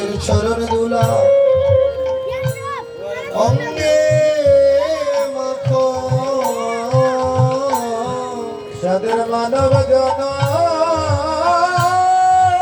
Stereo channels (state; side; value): identical; both; correlation 1.00